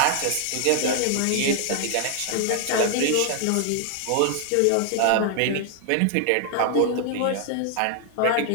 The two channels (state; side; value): different; both; correlation 0.00